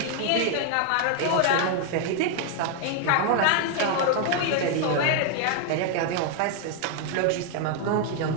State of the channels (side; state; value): both; different; correlation 0.00